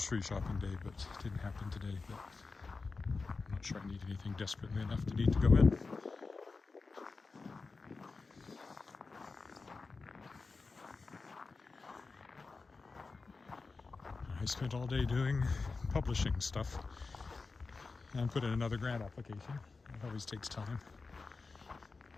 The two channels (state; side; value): quieter; right; 4.1 dB